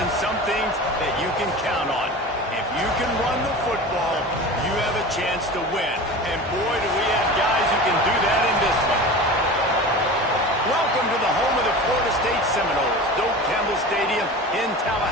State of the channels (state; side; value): normal; both; correlation 0.33